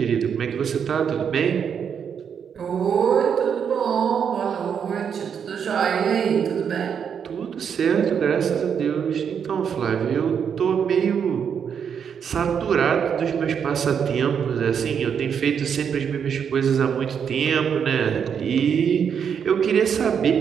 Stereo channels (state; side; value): quieter; left; 7.4 dB